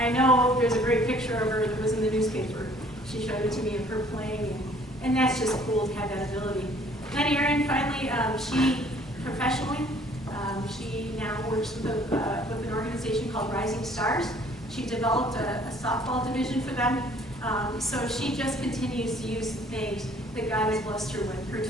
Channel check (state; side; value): normal; both; correlation 0.57